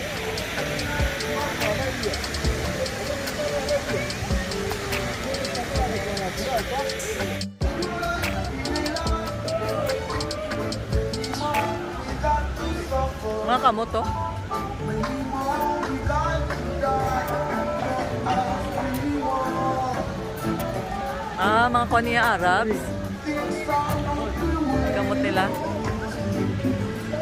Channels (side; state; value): both; identical; correlation 1.00